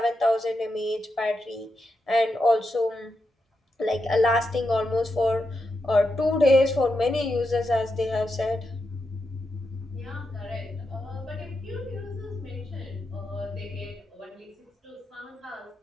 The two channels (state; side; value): normal; both; correlation 0.86